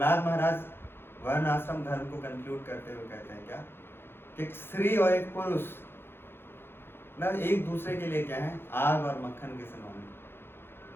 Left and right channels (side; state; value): right; late; 0.11 ms